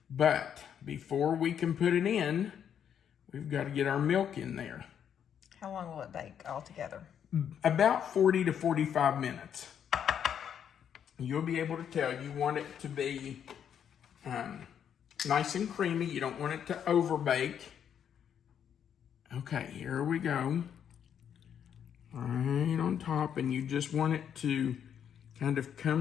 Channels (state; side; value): quieter; right; 8.6 dB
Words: But before we can put it in, we've got to get our milk in there. How long will it bake altogether? About 40 to 45 minutes. You'll be able to tell you want it to be nice and creamy. You don't want it to overbake. Okay, here we go. Right on top, and you just want it to kind of